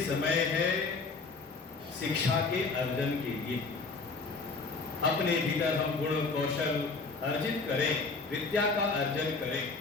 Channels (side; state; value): right; quieter; 4.1 dB